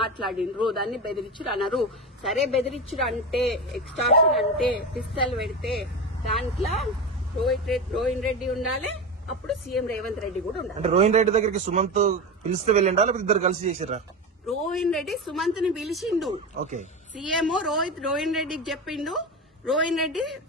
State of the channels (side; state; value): both; normal; correlation 0.21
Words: దాన్ని బెదిరించుడు అన్నారు. సరే, బెదిరించుడు అంటే, ఎక్స్టార్షన్ అంటే, పిస్తల్ పెడితే దాంట్లో రోహిన్ రెడ్డి ఉండాలి, అప్పుడు సీఎం రేవంత్ రెడ్డి కూడా ఉండాలి. అంటే రోహిన్ రెడ్డి దగ్గరికి సుమంత్ పిలిస్తే వెళ్ళిండా, లేకపోతే ఇద్దరు కలిసి చేసిర్రా? రోహిన్ రెడ్డి సుమంత్ ని పిలిచిండు. ఓకే, సీఎం రోహిన్ రెడ్డికి చెప్పిండు, రోహిన్ రెడ్డి